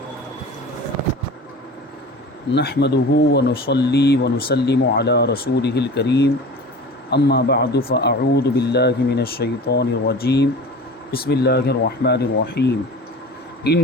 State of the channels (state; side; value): normal; both; correlation 0.36